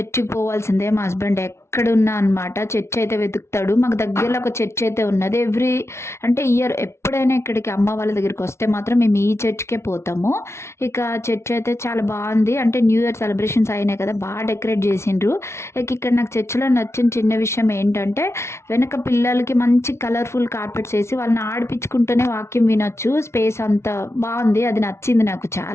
పోవాల్సిందే. మా హస్బెండ్ ఎక్కడున్నా అనమాట చర్చ్ అయితే వెతుకుతాడు. మాకు దగ్గరలో ఒక చర్చ్ అయితే ఉన్నది. అంటే ఇయర్ ఎప్పుడైనా ఇక్కడికి అమ్మ వాళ్ళ దగ్గరికి వస్తే మాత్రం మేము ఈ చర్చ్‌కే పోతాము. ఇక చర్చ్ అయితే చాలా బాగుంది. అంటే న్యూ ఇయర్ సెలబ్రేషన్స్ అయినాయి కదా! బాగా డెకరేట్ చేసిండ్రు. ఇక ఇక్కడ నాకు చర్చ్‌లో నచ్చిన చిన్న విషయం ఏంటంటే వెనక పిల్లలకి మంచి కలర్‌ఫుల్ కార్పెట్స్ ఏసి వాళ్ళని ఆడిపించుకుంటూనే వాక్యం వినొచ్చు. స్పేస్ అంతా బాగుంది. అది నచ్చింది నాకు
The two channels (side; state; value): right; late; 0.13 ms